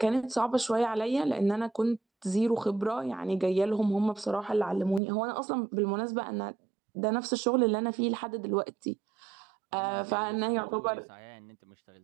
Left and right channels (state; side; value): drops out; left; at 5.0 s